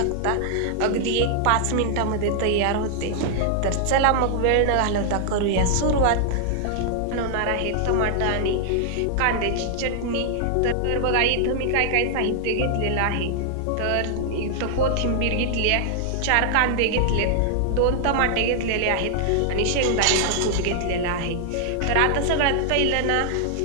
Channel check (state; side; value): different; both; correlation -0.01